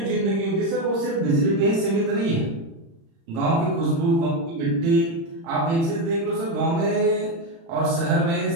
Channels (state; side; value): late; left; 36 ms